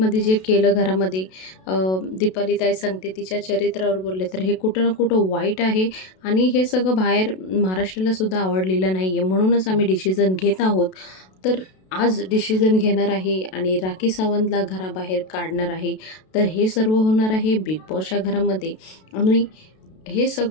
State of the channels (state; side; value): late; right; 32 ms